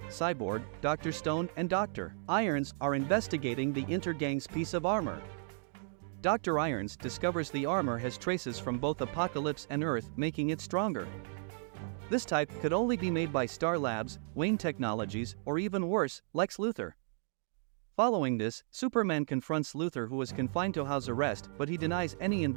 Cyborg, Dr. Stone and Dr. Irons are investigating the Intergang's piece of armor. Dr. Irons discovers the armor has traces from both Apocalypse and Earth, making it stronger. This type could only be made by Star Labs, Wayne Technologies, or even worse, Lex Luthor. Following this, Superman confronts Luthor, who is confined to house arrest, but he denies any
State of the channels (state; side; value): silent; left; digital silence